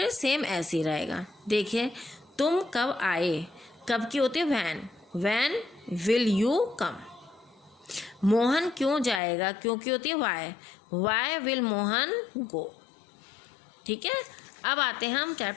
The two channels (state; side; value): drops out; right; at 9.2 s